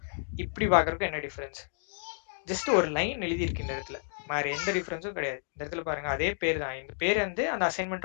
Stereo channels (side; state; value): right; silent; digital silence